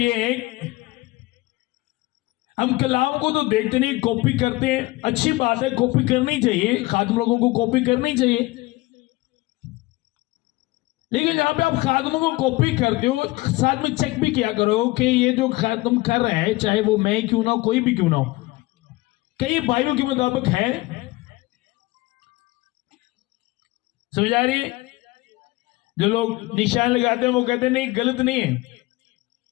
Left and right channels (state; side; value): quieter; right; 20.8 dB